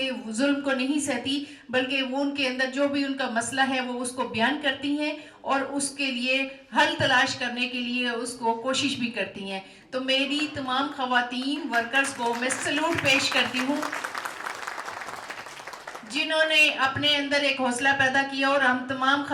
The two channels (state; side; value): identical; both; correlation 1.00